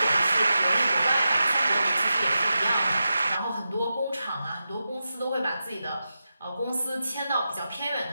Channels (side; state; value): both; inverted; correlation -0.90